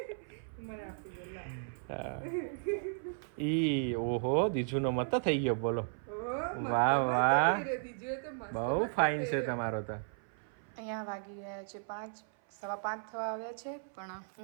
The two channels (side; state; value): left; silent; 54 dB below the other